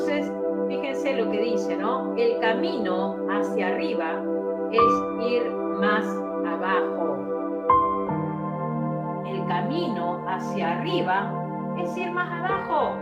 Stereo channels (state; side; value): identical; both; correlation 1.00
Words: fíjense lo que dice, ¿no? El camino hacia arriba es ir más abajo. El camino hacia arriba es ir más abajo.